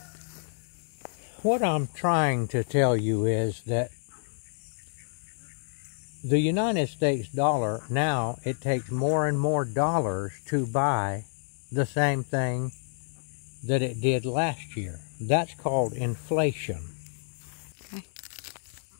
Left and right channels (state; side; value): silent; right; digital silence